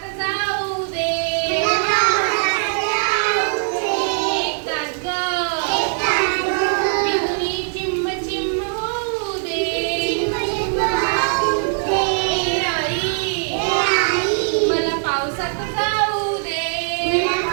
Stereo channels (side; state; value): left; silent; 65 dB below the other